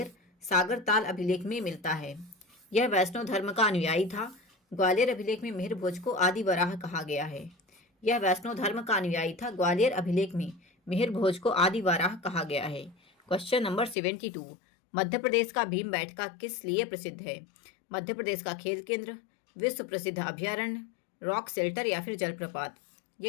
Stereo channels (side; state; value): right; drops out; at 14.0 s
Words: सागर ताल अभिलेख में मिलता है। यह वैष्णव धर्म का अनुयायी था। ग्वालियर अभिलेख में मिहिर भोज को आदि वराह कहा गया है। यह वैष्णव धर्म का अनुयायी था। ग्वालियर अभिलेख में मिहिर भोज को आदि वराह कहा गया है। क्वेश्चन नंबर 72, मध्य प्रदेश का भीमबेटका किस लिए प्रसिद्ध है? मध्य प्रदेश का खेल केंद्र, विश्व प्रसिद्ध अभ्यारण्य, रॉक शेल्टर या फिर जलप्रपात?